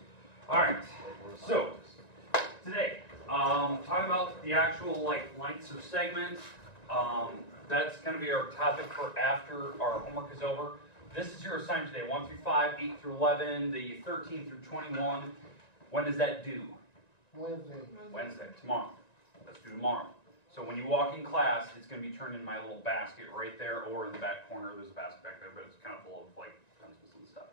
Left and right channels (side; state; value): right; late; 1.9 ms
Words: All right. So today, talking about the actual lengths of segments. That's going to be our topic for after our homework is over. This is your assignment today: 1 through 5, 8 through 11, the 13 through 21. When does that due? Wednesday. Tomorrow. Let's do tomorrow. So when you walk in class, it's going to be turned in my little basket right there, or in the back corner. There's a basket back there, but it's kind of full of pencils and stuff.